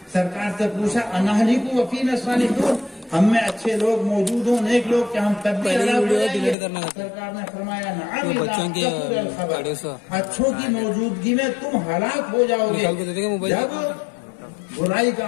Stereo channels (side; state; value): right; drops out; at 6.6 s